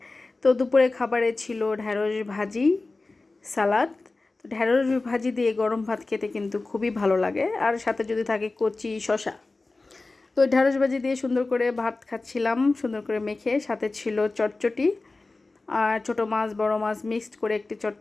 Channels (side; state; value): right; quieter; 3.4 dB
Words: তো দুপুরের খাবারে ছিল ঢ্যাঁড়স ভাজি, সালাদ। তো ঢ্যাঁড়স ভাজি দিয়ে গরম ভাত খেতে কিন্তু খুবই ভালো লাগে, আর সাথে যদি থাকে কচি শসা। তো ঢ্যাঁড়স ভাজি দিয়ে সুন্দর করে ভাত খাচ্ছিলাম, সুন্দর করে মেখে। সাথে ছিল চটচটি, আর ছোটো মাছ বড় মাছ মিক্সড করে একটি